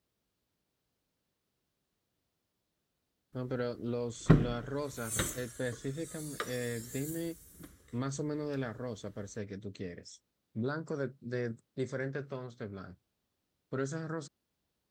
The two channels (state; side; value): identical; both; correlation 1.00